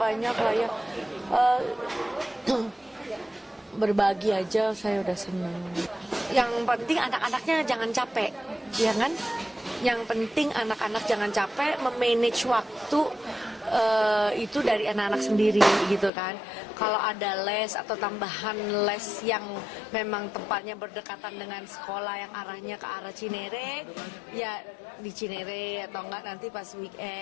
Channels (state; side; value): drops out; right; at 16.1 s